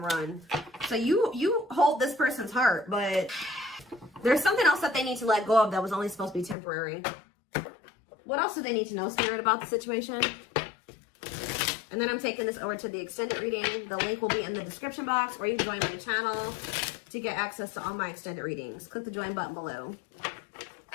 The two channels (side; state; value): right; drops out; at 6.6 s